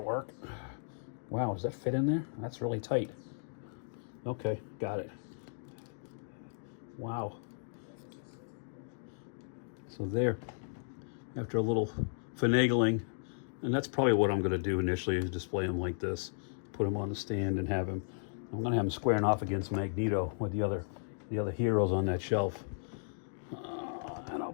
work. Wow, does that fit in there? That's really tight. Okay, got it. Wow. So there, after a little finagling, and that's probably what I'm going to do initially, is display him like this, put him on the stand and have him, I'm going to have him squaring off against Magneto with the other heroes on that shelf. And I'll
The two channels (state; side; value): silent; right; digital silence